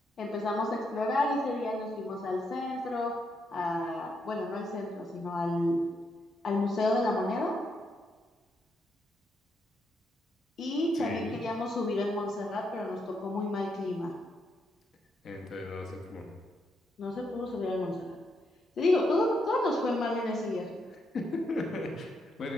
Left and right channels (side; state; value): both; normal; correlation 0.79